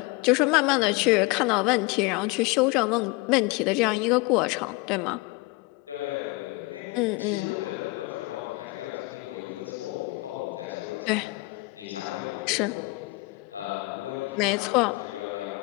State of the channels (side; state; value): right; quieter; 23.8 dB